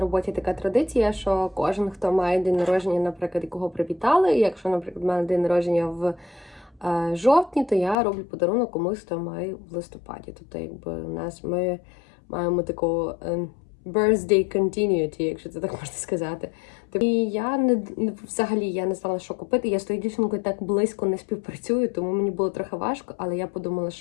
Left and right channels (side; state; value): right; drops out; at 8.0 s